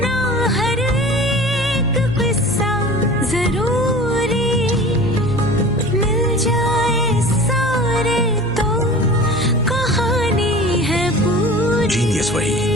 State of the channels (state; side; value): noise; left; hum, 14 dB below the sound